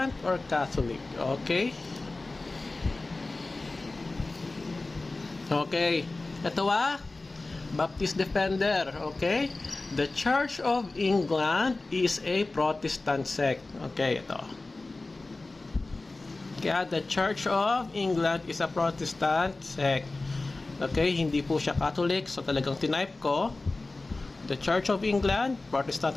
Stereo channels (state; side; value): quieter; right; 3.3 dB